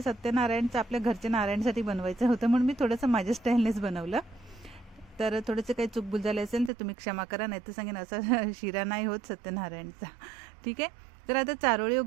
सत्यनारायणचं आपल्या घरच्या नारायणसाठी बनवायचं होतं, म्हणून मी थोडंसं माझ्या स्टाईलनेच बनवलं. तर थोडंसं काही चूकभूल झाले असेल तर तुम्ही क्षमा करा, नाही तर सांगेन असा शिरा नाही होत सत्यनारायणचा. ठीक आहे. तर आता चारोळी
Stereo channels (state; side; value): drops out; left; at 6.7 s